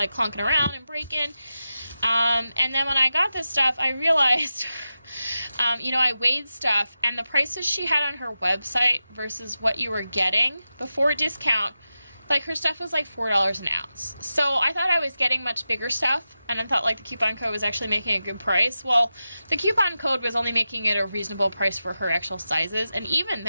clunking around and breaking. And then when I got this stuff, I realized, I weighed stuff, and the prices she had on her website versus what you were getting before discount, like her stuff was like $4 an ounce. So I thought I was getting much bigger stuff, and I thought like the coupon code was actually making a good price. Well, the coupon code was only making it a reasonable price for her actual sizes, and even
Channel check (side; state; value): both; inverted; correlation -0.91